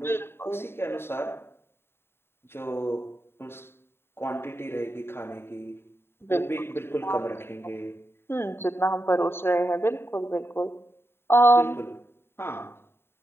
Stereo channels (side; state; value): right; late; 0.11 ms